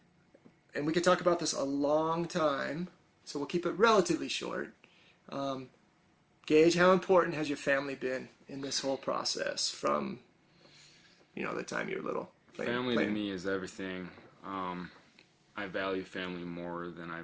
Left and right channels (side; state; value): both; identical; correlation 1.00